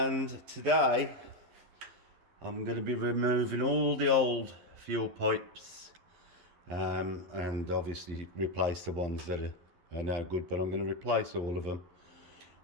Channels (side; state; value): left; late; 12 ms